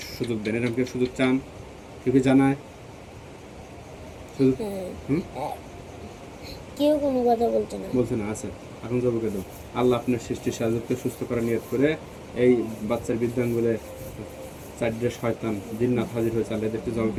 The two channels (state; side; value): identical; both; correlation 1.00